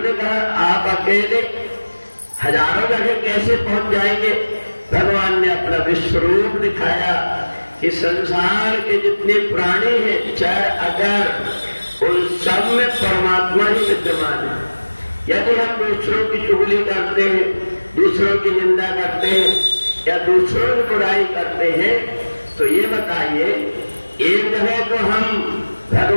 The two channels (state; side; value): inverted; both; correlation -1.00